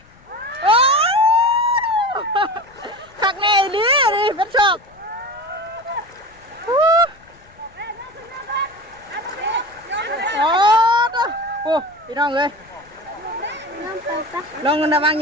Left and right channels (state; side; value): noise; left; rumble, 28 dB below the sound